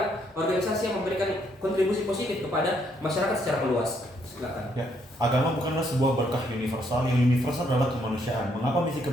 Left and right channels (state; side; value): normal; both; correlation 0.72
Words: organisasi yang memberikan kontribusi positif kepada masyarakat secara meluas. Silakan. Ya, agama bukanlah sebuah berkah universal. Yang universal adalah kemanusiaan. Mengapa misi